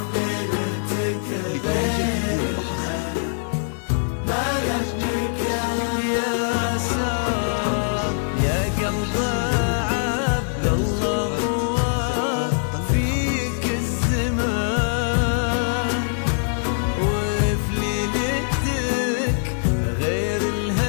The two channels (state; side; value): silent; right; digital silence